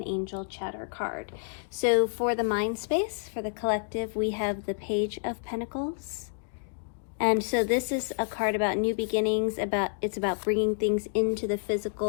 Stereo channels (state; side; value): silent; right; digital silence